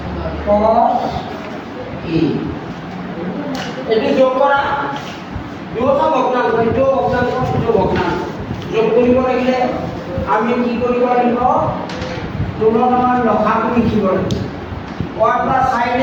cos a এটি যোগ করা দুটা ভগ্নাংশ এইটো ভগ্নাংশ এইটো ভগ্নাংশ যোগ কৰিব লাগিলে আমি কি কৰিব লাগিব তুলনাৰ লসাগু লিখিব লাগিব 1 plus sin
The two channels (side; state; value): both; identical; correlation 1.00